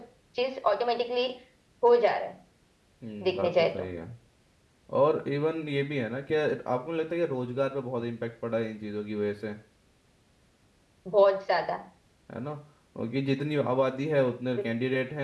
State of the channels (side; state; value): both; identical; correlation 1.00